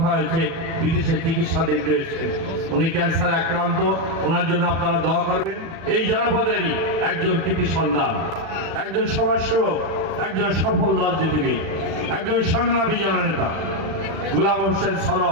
হয়েছে, বিদেশে চিকিৎসাধীন রয়েছেন, উনি ক্যান্সারে আক্রান্ত, ওনার জন্য আপনারা দোয়া করবেন। এই জনপদেরই একজন কৃতি সন্তান, একজন সমাজসেবক, একজন সফল রাজনীতিবিদ, একজন সংগ্রামী জননেতা গোলাম হোসেন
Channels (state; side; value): late; left; 36 ms